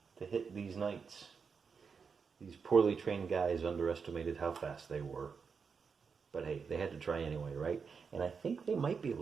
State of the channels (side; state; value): left; quieter; 5.7 dB